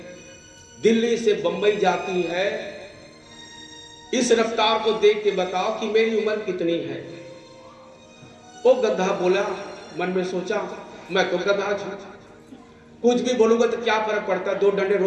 दिल्ली से बंबई जाती है। इस रफ्तार को देख के बताओ कि मेरी उम्र कितनी है। वो गधा बोला, मन में सोचा, मैं तो गधा था, कुछ भी बोलूंगा तो क्या फर्क पड़ता, 2 डंडे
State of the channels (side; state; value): both; identical; correlation 1.00